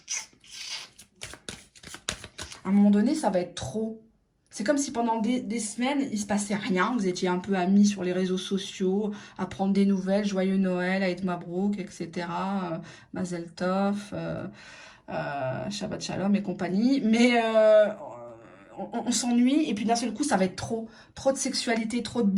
À un moment donné, ça va être trop. C'est comme si pendant des semaines, il ne se passait rien. Vous étiez un peu amis sur les réseaux sociaux, à prendre des nouvelles, joyeux Noël, Aïd Mabrouk, etc. Mazel Tov, Shabbat Shalom et compagnie. Mais on s'ennuie et puis d'un seul coup, ça va être trop. Trop de sexualité, trop de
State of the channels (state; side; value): identical; both; correlation 1.00